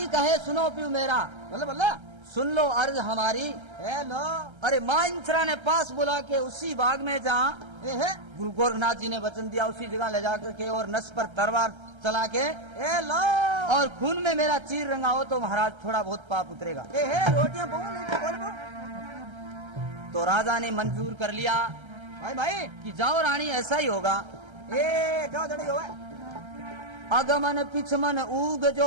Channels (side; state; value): left; late; 1.3 ms